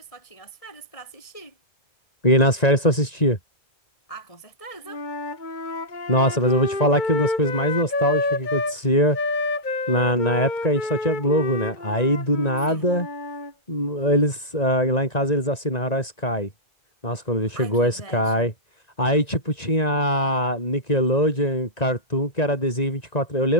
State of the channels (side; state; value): right; late; 1.9 ms